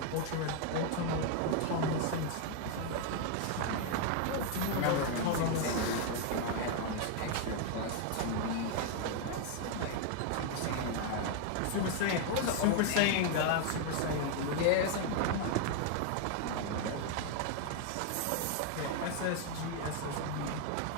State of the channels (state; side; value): different; both; correlation 0.00